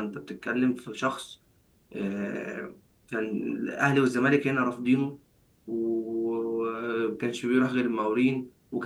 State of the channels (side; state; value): both; identical; correlation 1.00